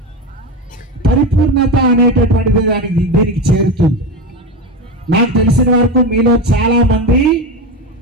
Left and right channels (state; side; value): normal; both; correlation 0.19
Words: పరిపూర్ణత అనేటటువంటిది దీనికి చేరుతుంది. నాకు తెలిసిన వరకు మీలో చాలా మంది